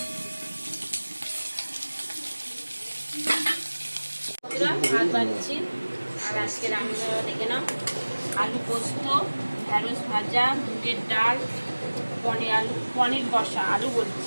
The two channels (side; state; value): both; inverted; correlation -1.00